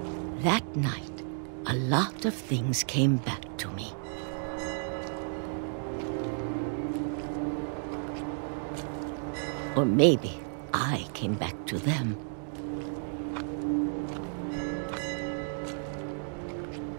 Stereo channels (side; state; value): left; silent; digital silence